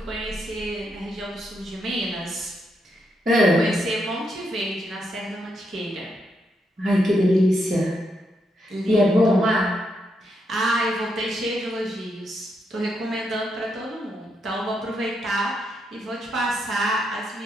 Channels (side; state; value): both; normal; correlation 0.80